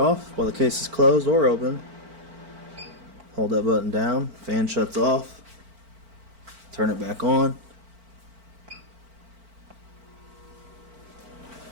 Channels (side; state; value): left; late; 4.4 ms